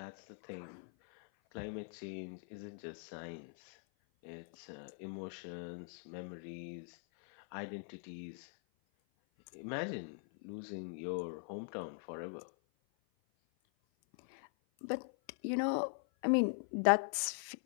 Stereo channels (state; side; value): silent; right; 50 dB below the other